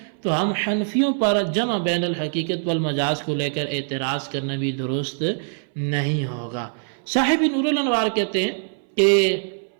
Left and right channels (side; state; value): left; silent; 60 dB below the other